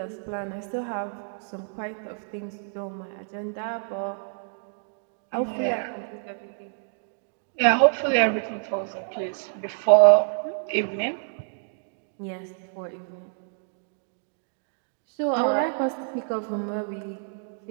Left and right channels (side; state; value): left; silent; digital silence